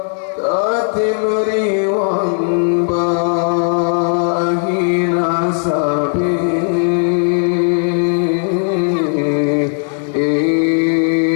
liwang bahina sabi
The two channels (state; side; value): silent; right; 58 dB below the other